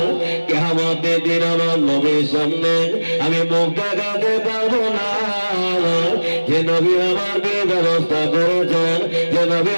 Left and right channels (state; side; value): inverted; both; correlation -1.00